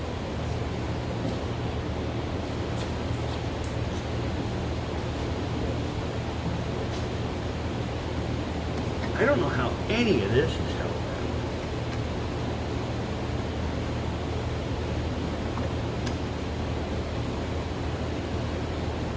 I don't know how any of this is held.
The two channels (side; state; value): both; identical; correlation 1.00